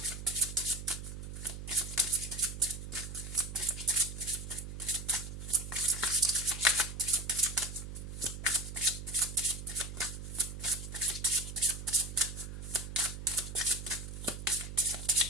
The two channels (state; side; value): noise; right; hum, 8 dB below the sound